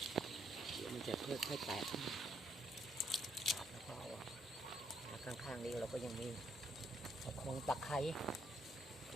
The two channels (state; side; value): normal; both; correlation 0.73